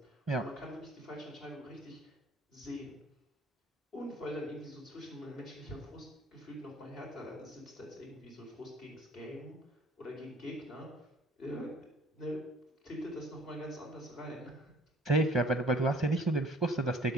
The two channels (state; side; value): normal; both; correlation 0.54